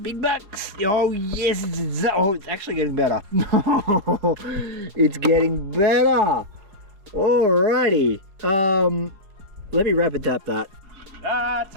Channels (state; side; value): late; left; 4.9 ms